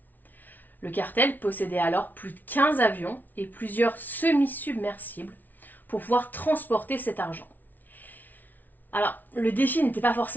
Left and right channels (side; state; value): right; late; 0.083 ms